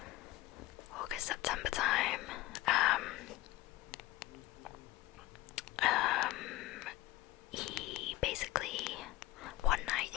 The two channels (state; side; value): quieter; right; 17.4 dB